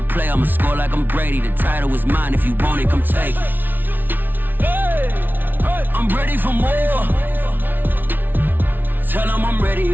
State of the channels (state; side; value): late; left; 0.090 ms